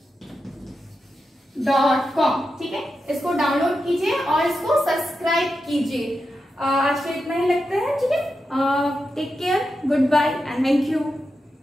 ठीक है, इसको डाउनलोड कीजिए और इसको सब्सक्राइब कीजिए। आज के इतना ही लगता है। ठीक है, take care, goodbye and thank you.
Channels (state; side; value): normal; both; correlation 0.89